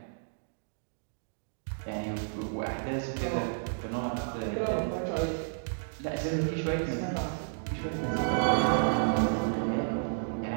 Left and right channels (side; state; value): left; silent; digital silence